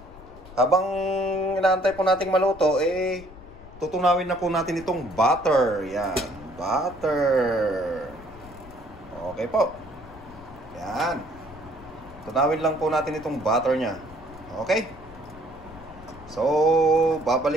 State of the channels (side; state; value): left; noise; rumble, 19 dB below the sound